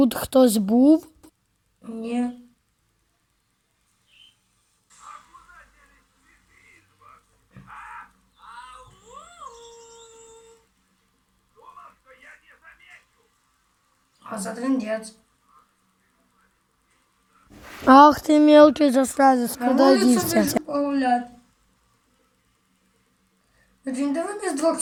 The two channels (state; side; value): identical; both; correlation 1.00